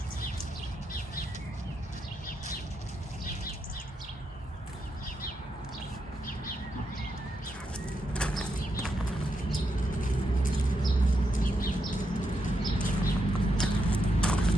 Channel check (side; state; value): both; normal; correlation 0.82